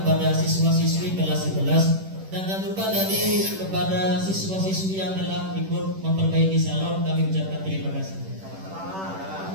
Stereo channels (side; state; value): left; late; 10 ms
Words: siswa-siswi kelas 11 dan jangan lupa tadi kepada siswa-siswi yang telah ikut memperbaiki salon, kami ucapkan terima kasih.